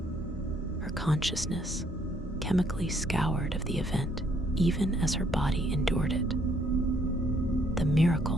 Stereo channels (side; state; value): both; normal; correlation 0.67